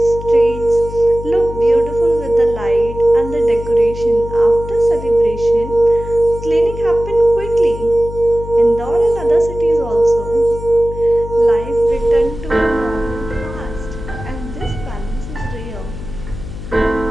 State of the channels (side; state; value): left; noise; hum, 10 dB below the sound